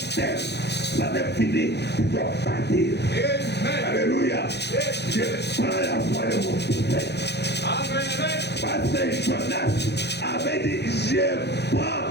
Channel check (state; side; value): late; right; 0.49 ms